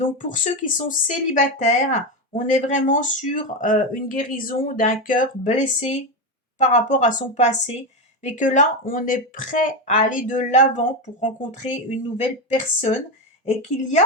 pour ceux qui sont célibataires, On est vraiment sur une guérison d'un cœur blessé par rapport à son passé, mais que là, on est prêt à aller de l'avant pour rencontrer une nouvelle personne et qu'il y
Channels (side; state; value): both; normal; correlation 0.13